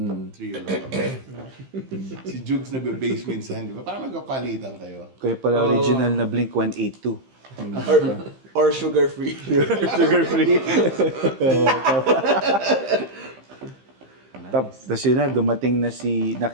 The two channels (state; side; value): late; left; 15 ms